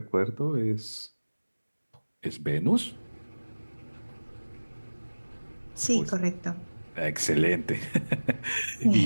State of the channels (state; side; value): inverted; both; correlation -1.00